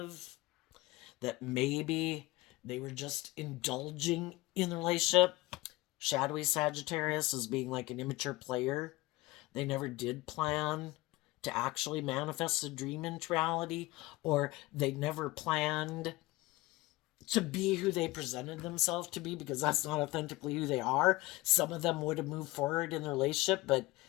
that maybe they were just indulging in the relationship. Shadowy Sagittarius is being like an immature player. They never did plan to actually manifest a dream into reality, or they never planned to be who they presented themselves to be, because that's not authentically who they are. Some of them would have moved forward in their relationship, but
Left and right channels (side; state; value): right; quieter; 20.1 dB